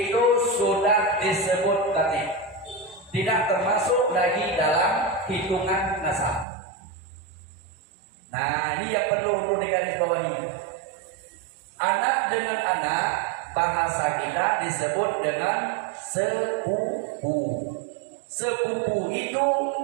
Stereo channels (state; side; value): drops out; left; at 6.5 s